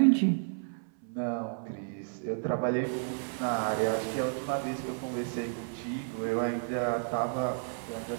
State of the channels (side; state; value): left; silent; 57 dB below the other